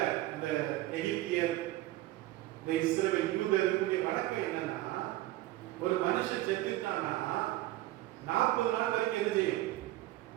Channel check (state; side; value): quieter; left; 16.6 dB